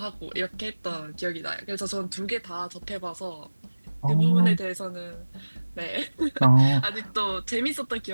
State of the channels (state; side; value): inverted; both; correlation -1.00